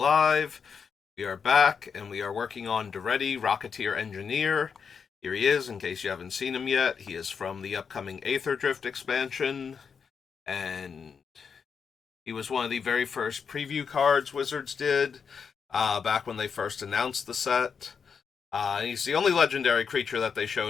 We are back, and we are working on Daretti, Rocketeer Engineer. Here he is, in case you haven't seen him yet. He is from the upcoming Aether Drift expansion, and he was one of the very first preview cards Wizards did, back when they first announced the set. He's the only legendary creature that they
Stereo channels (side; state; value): right; quieter; 6.3 dB